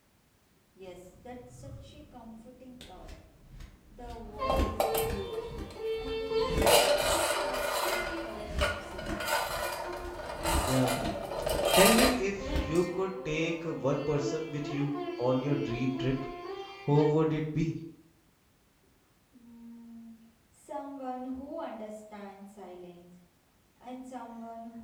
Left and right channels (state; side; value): identical; both; correlation 1.00